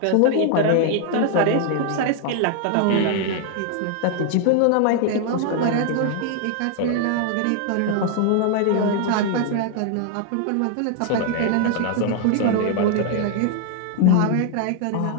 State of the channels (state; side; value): different; both; correlation 0.00